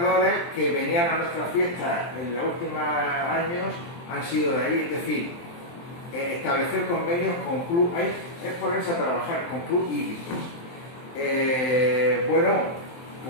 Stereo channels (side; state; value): right; late; 23 ms